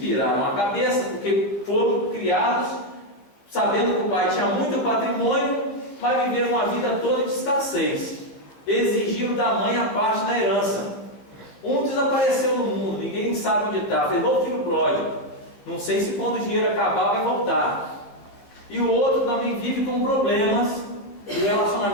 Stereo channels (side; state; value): right; late; 15 ms